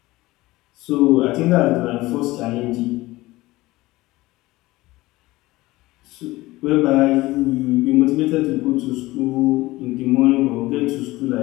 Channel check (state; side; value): quieter; right; 19.2 dB